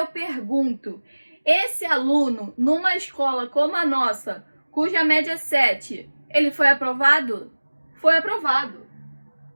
pergunto, esse aluno, numa escola como a nossa, cuja média é 7, ele foi aprovado? Foi aprovado.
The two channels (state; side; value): inverted; both; correlation -1.00